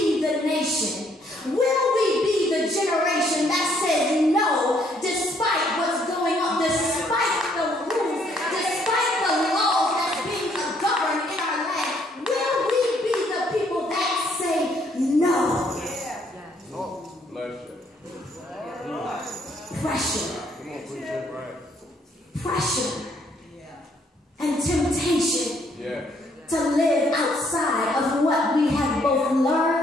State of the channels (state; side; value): normal; both; correlation 0.68